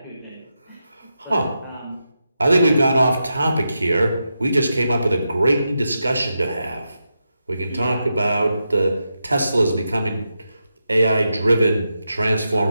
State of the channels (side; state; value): both; inverted; correlation -0.87